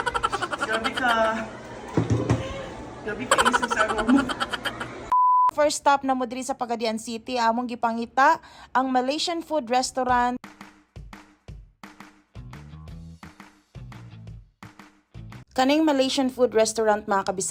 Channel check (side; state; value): both; identical; correlation 1.00